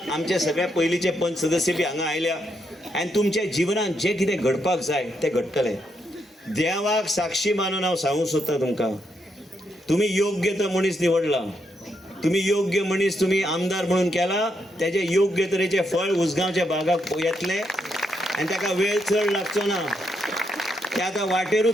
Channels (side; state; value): both; normal; correlation 0.79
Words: आमचे सगळे पयलींचे पंच सदस्य बी हांगा आयल्या, आनी तुमच्या जिवनांत जें कितें घडपाक जाय तें घडटलें. देवाक साक्षी मानून हांव सांगूंक सोदता तुमकां, तुमी योग्य तो मनीस निवडला, तुमी योग्य मनीस तुमी आमदार म्हणून केला, तेजे योग्य तरेचे फळ उसगांवच्या भागाक येतले. आनी ताका वेळ चड लागचो ना. ते आतां